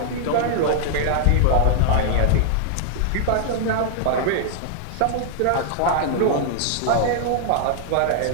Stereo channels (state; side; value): different; both; correlation -0.01